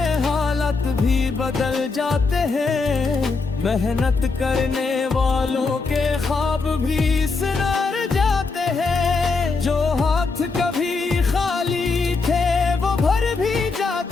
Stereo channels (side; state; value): right; quieter; 4.2 dB